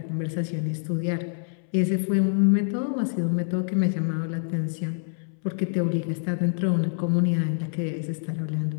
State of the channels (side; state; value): right; silent; 61 dB below the other